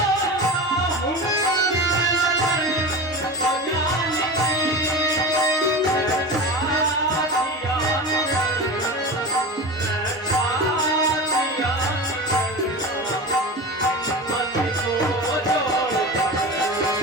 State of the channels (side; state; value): both; normal; correlation 0.27